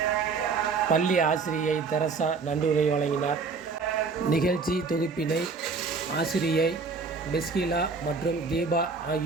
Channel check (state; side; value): quieter; left; 4.6 dB